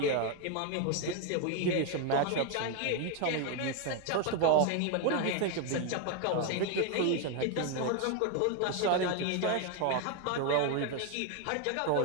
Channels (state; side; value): different; both; correlation 0.01